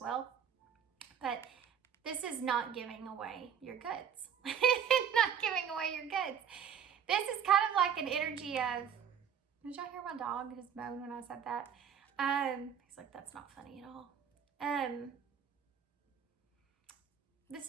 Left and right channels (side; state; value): left; quieter; 8.1 dB